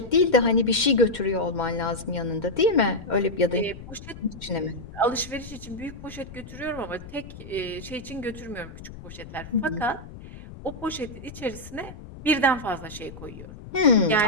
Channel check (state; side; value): noise; left; rumble, 14 dB below the sound